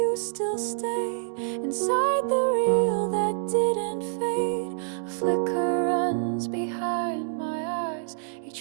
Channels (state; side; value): silent; left; digital silence